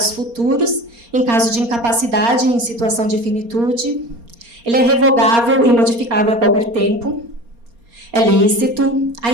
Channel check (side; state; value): left; late; 4.3 ms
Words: futuros, em caso de incapacidade em situação de finitude. Ele é revogável e modificável a qualquer tempo. É lícito. A